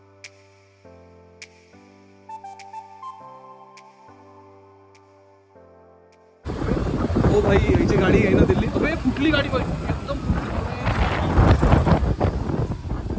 ओ भाई याची गाडी आहे ना दिल्ली. अरे कुठली गाडी भाई, एकदम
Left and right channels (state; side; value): identical; both; correlation 1.00